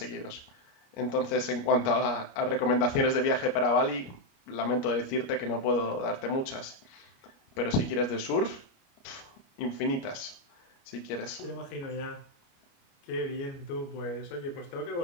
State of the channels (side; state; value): right; late; 29 ms